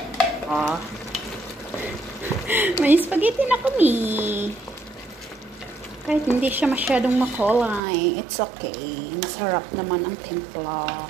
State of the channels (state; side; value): drops out; left; at 7.8 s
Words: May spaghetti na kami. Kahit hindi siya masyadong makulay, it's okay. Masarap naman ang timpla.